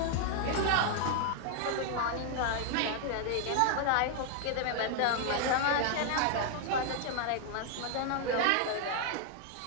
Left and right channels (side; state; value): both; different; correlation 0.00